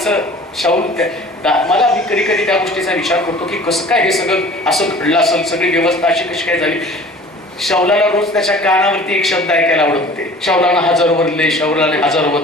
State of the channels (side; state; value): both; normal; correlation 0.45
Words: मला मी कधी कधी त्या गोष्टीचा विचार करतो की कसं काय हे सगळं असं घडलं असेल, सगळी व्यवस्था अशी कशी काय झाली. शौलाला रोज त्याच्या कानावरती एक शब्द ऐकायला आवडत होते, शौलानं 1000 बदले, शौलाने 1000